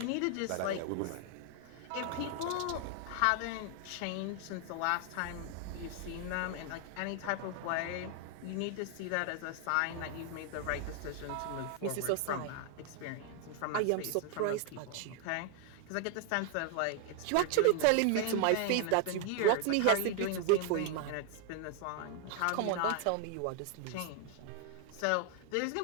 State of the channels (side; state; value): both; different; correlation 0.00